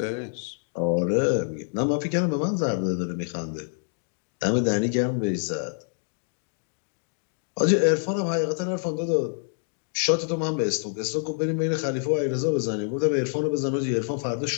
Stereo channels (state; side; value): silent; right; 60 dB below the other